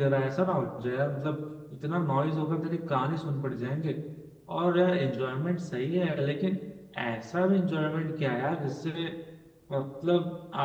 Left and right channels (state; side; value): identical; both; correlation 1.00